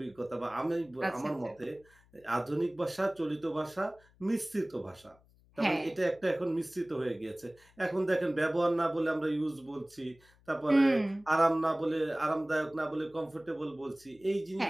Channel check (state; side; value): noise; left; hum, 30 dB below the sound